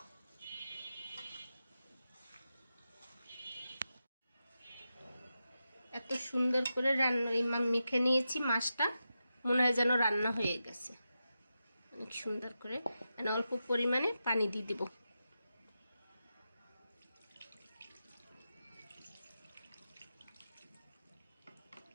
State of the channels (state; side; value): inverted; both; correlation -0.89